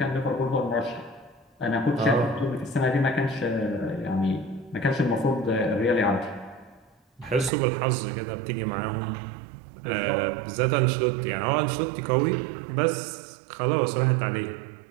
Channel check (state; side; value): drops out; left; at 7.5 s